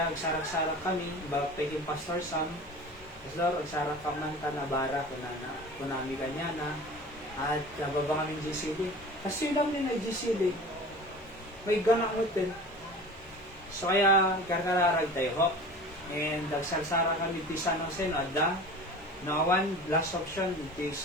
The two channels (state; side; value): normal; both; correlation 0.38